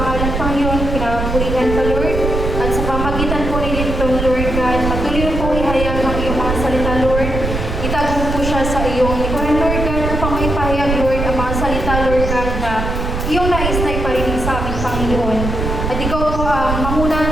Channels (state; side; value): noise; right; rumble, 3 dB below the sound